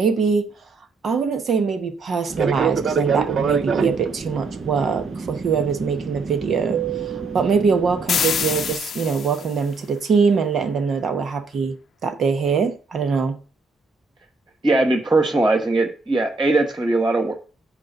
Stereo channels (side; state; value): left; quieter; 3.9 dB